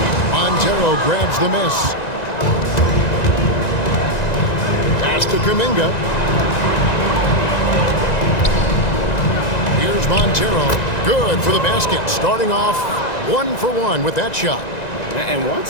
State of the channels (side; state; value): right; late; 1.9 ms